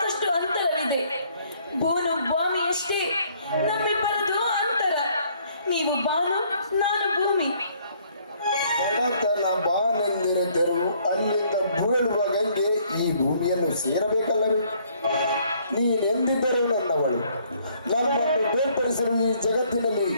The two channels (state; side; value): inverted; both; correlation -0.64